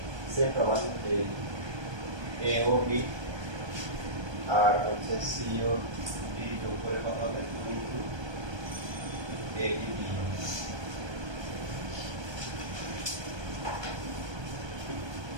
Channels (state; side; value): late; left; 1.2 ms